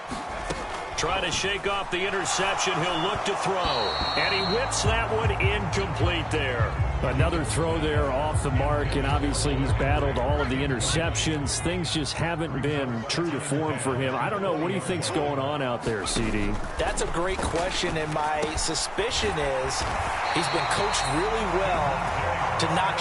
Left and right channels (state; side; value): identical; both; correlation 1.00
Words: Trying to shake off the interception. He'll look to throw. And he whips that one incomplete there. Another throw there off the mark, and obviously he's battled all of the interceptions. Things just haven't been true to form for him. I don't know. What do you think's going on out there, CD? That's a great question, and my suspicion is he's been coached really well to not